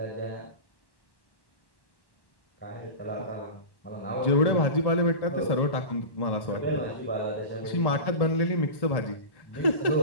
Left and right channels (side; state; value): right; late; 1.1 ms